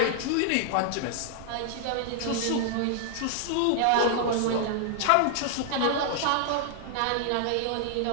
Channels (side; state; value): both; different; correlation 0.00